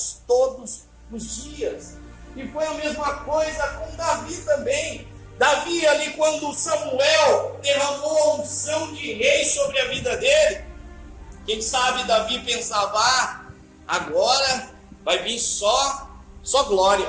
todos os dias. E foi a mesma coisa com Davi também. Davi ali, quando Samuel derramou a unção de rei sobre a vida dele, quem sabe Davi pensava, agora vai vir só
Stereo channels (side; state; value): both; identical; correlation 1.00